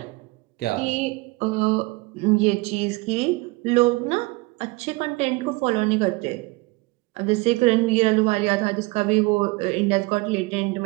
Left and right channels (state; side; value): quieter; left; 23.8 dB